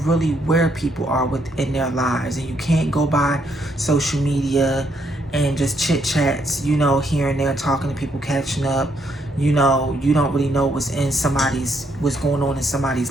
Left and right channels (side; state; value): both; normal; correlation 0.73